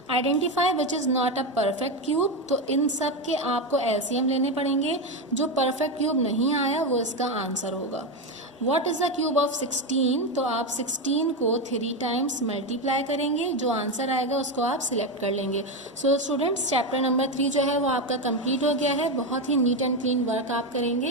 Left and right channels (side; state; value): both; normal; correlation 0.12